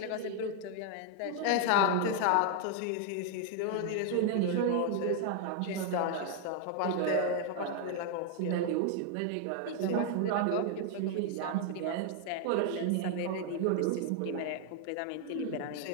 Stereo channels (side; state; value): both; different; correlation 0.00